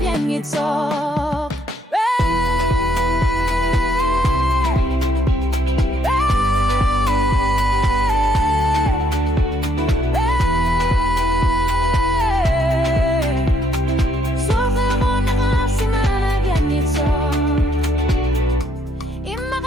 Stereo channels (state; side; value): normal; both; correlation 0.70